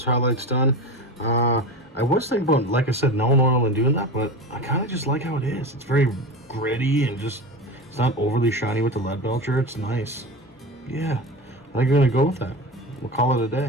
highlights done, I was thinking about, like I said, no oil and doing that, but I kind of just like how it is. It's very gritty and just, it's not overly shiny with the lead belcher. It's nice. Yeah, I think I'm going to go with that. We'll call it a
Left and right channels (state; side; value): normal; both; correlation 0.27